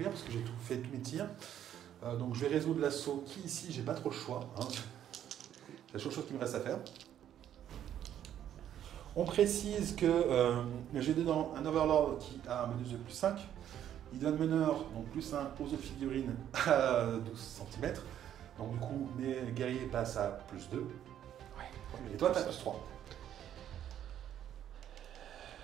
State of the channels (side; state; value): left; quieter; 10.6 dB